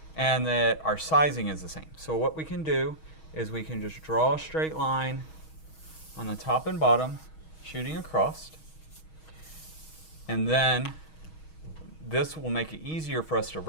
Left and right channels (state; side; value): late; right; 6.3 ms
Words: and that our sizing is the same. So what we can do is we can just draw a straight line on the top and bottom, shooting across. And then this will make it easier for us to